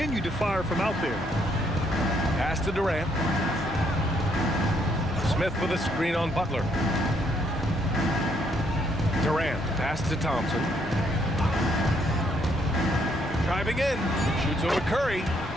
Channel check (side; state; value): both; normal; correlation 0.71